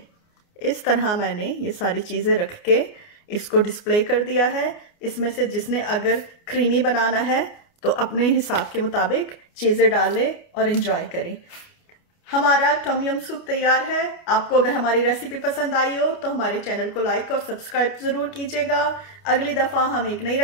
इस तरह मैंने ये सारी चीजें रख के इसको डिस्प्ले कर दिया है। इसमें से जिसने अगर क्रीमी बनाना है तो अपने हिसाब के मुताबिक चीजें डाल ले और एंजॉय करें। हमारा टम यम सूप तैयार है। आपको अगर हमारी रेसिपी पसंद आई हो तो हमारे चैनल को लाइक और सब्सक्राइब जरूर कीजिएगा। अगली दफा हम एक नई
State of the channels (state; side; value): late; right; 29 ms